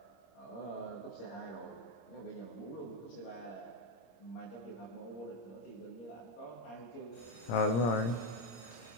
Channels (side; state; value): right; late; 26 ms